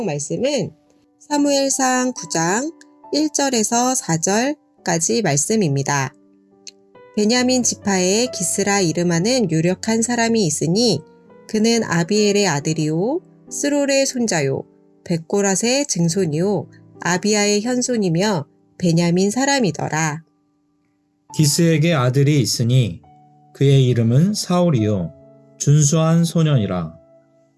말씀은 사무엘상 9장 1절에서 4절까지 말씀입니다. 베냐민 지파에 기스라 이름하는 유력한 사람이 있으니 그는 아비엘의 아들이요 스롤의 손자요 백고랏의 증손이요 아비야의 현손이며 베냐민 사람이더라. 기스에게 아들이 있으니 그의 이름은 사울이요 준수한 소년이라.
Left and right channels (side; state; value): both; identical; correlation 1.00